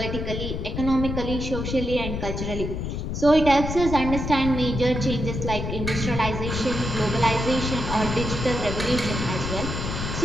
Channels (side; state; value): left; noise; rumble, 4 dB below the sound